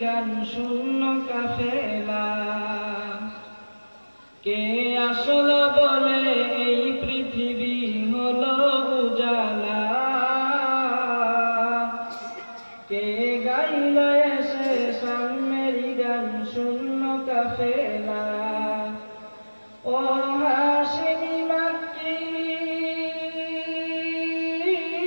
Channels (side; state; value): both; inverted; correlation -1.00